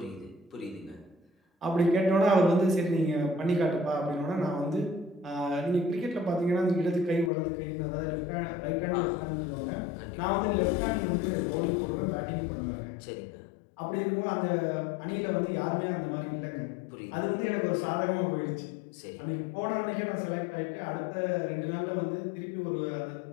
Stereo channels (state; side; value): drops out; right; at 7.3 s